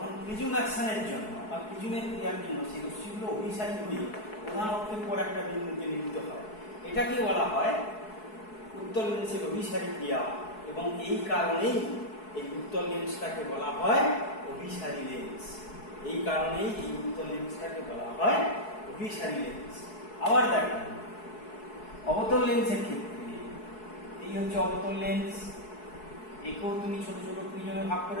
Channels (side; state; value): right; late; 4.7 ms